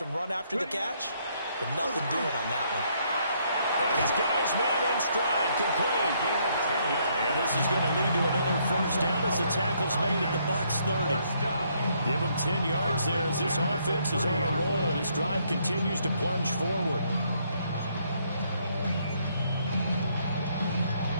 run after the catch, but nothing doing on that one. And he's got his man in stride, complete. And this is going to lead to another first down as the tackle's made at the Bucs 30. Give him 10 yards there as this offense is on a roll. This drive continues to plunge forward.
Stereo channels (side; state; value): both; inverted; correlation -0.70